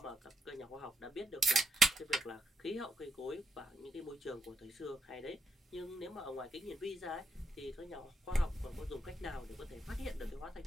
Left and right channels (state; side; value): normal; both; correlation 0.79